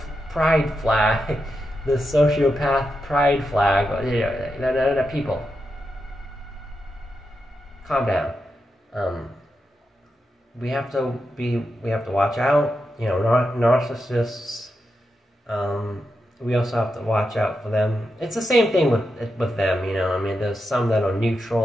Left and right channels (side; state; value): both; normal; correlation 0.87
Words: pride flag. The sociopath pride flag, people. Calm down. We have to watch out. Narcissists. We also have to watch out for them. It's the same thing with them. There's some that are